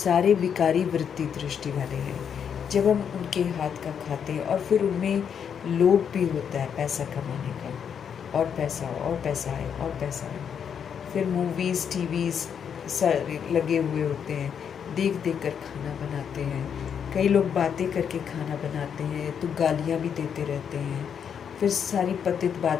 विकारी वृत्ति दृष्टि वाले हैं। जब हम उनके हाथ का खाते हैं और फिर उनमें लोभ भी होता है पैसा कमाने का, और पैसा आए और पैसा आए, फिर मूवीज़ टीवीज़ सारे लगे हुए होते हैं, देख कर खाना बनाते हैं। कई लोग बातें करके खाना बनाते हैं तो गालियाँ भी देते रहते हैं, फिर सारी पतित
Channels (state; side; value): quieter; right; 7.7 dB